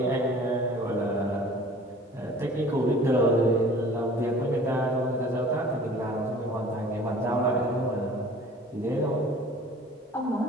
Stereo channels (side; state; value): both; normal; correlation 0.47